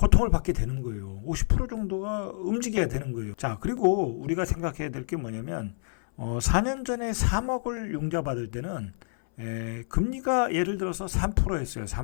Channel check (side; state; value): right; silent; 59 dB below the other